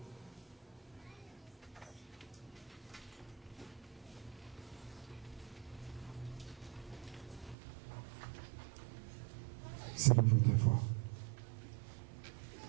Selon votre foi.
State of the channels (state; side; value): drops out; left; at 7.6 s